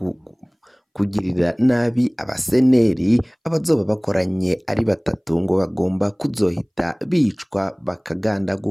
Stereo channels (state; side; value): identical; both; correlation 1.00